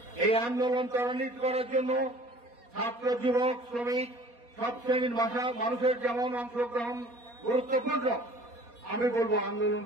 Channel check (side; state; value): left; late; 4.2 ms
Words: এই আন্দোলন ত্বরান্বিত করার জন্য ছাত্র, যুবক, শ্রমিক সব শ্রেণীর মানুষের যেমন অংশগ্রহণ গুরুত্বপূর্ণ, আমি বলবো